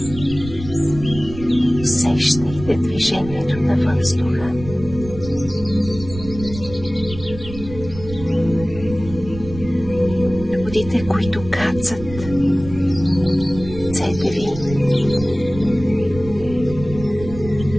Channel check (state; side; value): noise; right; rumble, 12 dB below the sound